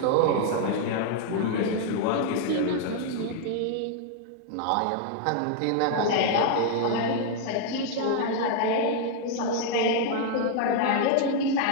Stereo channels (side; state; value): both; different; correlation 0.00